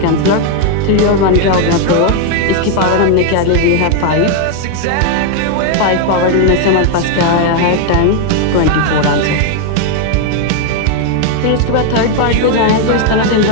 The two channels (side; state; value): both; different; correlation 0.01